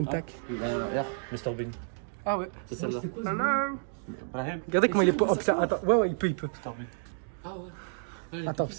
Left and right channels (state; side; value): silent; left; digital silence